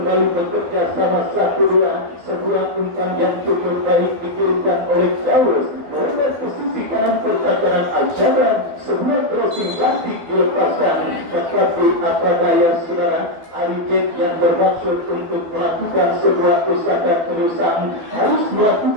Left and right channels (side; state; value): left; late; 12 ms